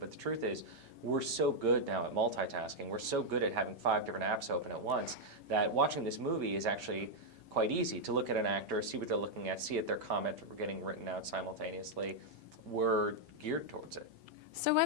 the truth is, we're so good now at multitasking. We're so good at having 5 different apps open at once that watching this movie is actually quite easy to look at an actor, see what they're looking at, see if their comment getting written out simultaneously. We're geared towards it. So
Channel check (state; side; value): late; left; 5.1 ms